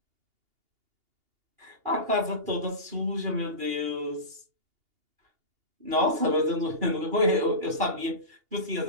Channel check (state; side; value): late; left; 2.8 ms